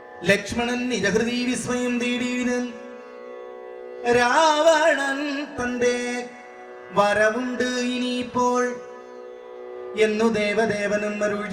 ലക്ഷ്മണൻ നിജഹൃദി വിസ്മയം തേടിയിടൻ. രാവണൻ തന്റെ വരവുണ്ട് ഇനിയിപ്പോൾ എന്നു ദേവദേവനും അരുൾ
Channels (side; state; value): both; identical; correlation 1.00